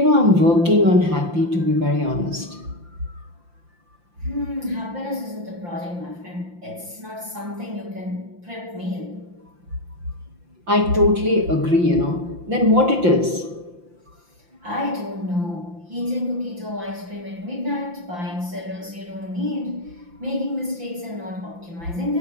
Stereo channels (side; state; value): left; late; 5.8 ms